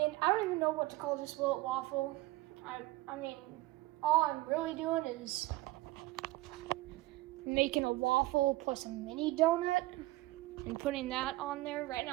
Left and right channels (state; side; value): quieter; left; 19.1 dB